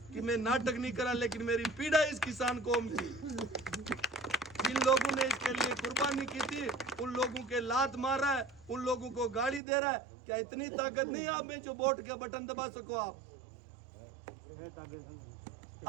कि मैं नाटक नहीं करा, लेकिन मेरी पीड़ा इस किसान कौम की, जिन लोगों ने इसके लिए कुर्बानी की थी, उन लोगों के लात मार रहा है, उन लोगों को गाली दे रहा है। क्या इतनी ताकत नहीं आप में जो वोट के बटन दबा सको?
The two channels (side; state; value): left; drops out; at 9.6 s